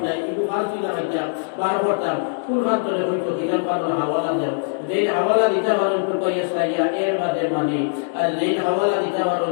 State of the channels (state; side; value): silent; right; 64 dB below the other